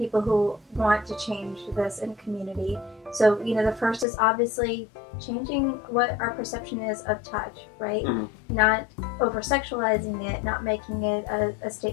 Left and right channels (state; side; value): drops out; right; at 4.0 s